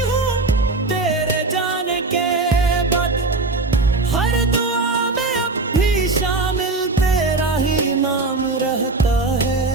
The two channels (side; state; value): left; quieter; 3.4 dB